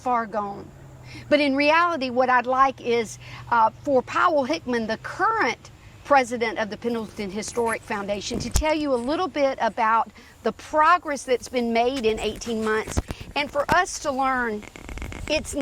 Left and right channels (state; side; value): identical; both; correlation 1.00